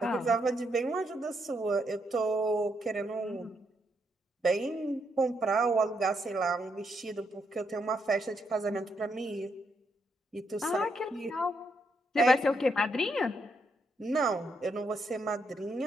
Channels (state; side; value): normal; both; correlation 0.78